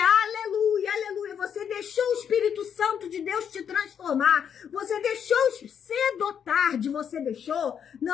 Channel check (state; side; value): quieter; right; 8.0 dB